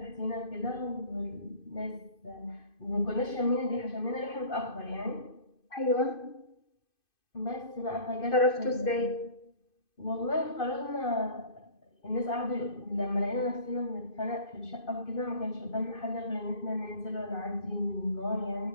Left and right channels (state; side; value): late; right; 2.5 ms